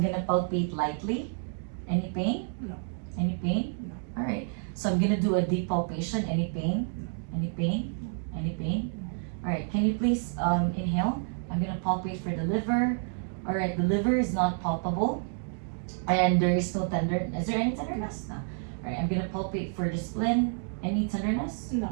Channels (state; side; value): silent; left; 58 dB below the other